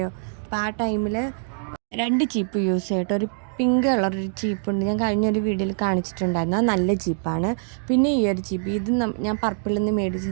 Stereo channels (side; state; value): left; silent; 63 dB below the other